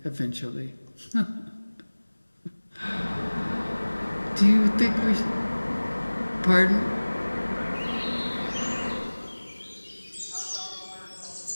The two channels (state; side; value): inverted; both; correlation -1.00